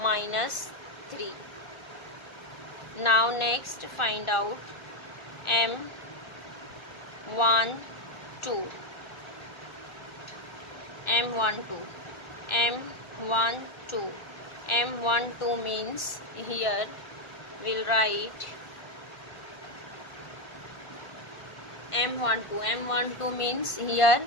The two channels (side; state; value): right; late; 1.4 ms